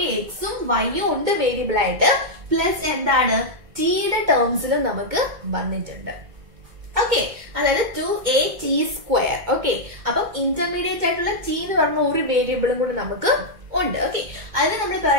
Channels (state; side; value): late; left; 2.1 ms